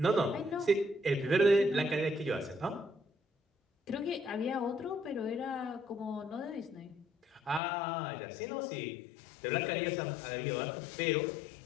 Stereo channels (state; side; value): drops out; right; at 7.6 s